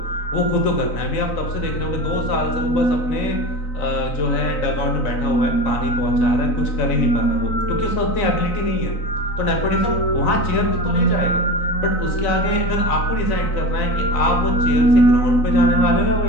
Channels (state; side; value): late; right; 3.9 ms